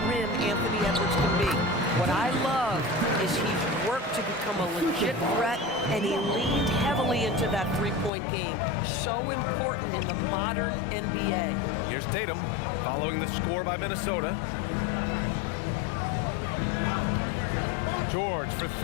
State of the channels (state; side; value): drops out; right; at 8.1 s